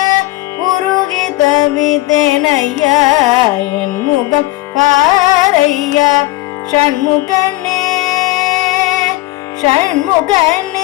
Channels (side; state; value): right; quieter; 18.5 dB